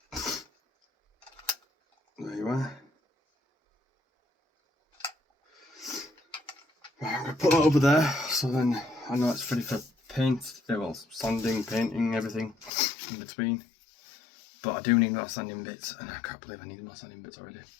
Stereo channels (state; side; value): drops out; right; at 12.7 s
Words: There you are. Right, I'm going to put that over there, so then I know it's ready for paint, well, sanding, painting, everything in between. But I do need more sanding bits, and I can't believe I need more sanding bits already.